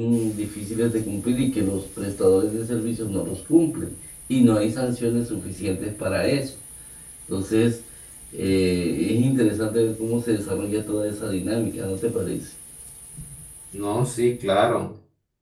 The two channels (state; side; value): identical; both; correlation 1.00